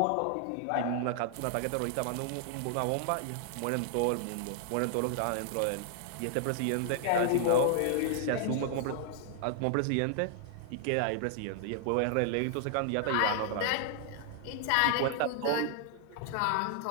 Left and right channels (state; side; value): different; both; correlation 0.00